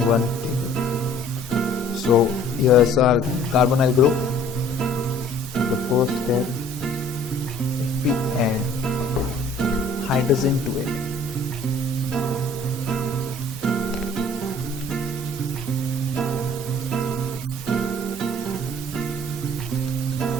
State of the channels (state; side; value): normal; both; correlation 0.54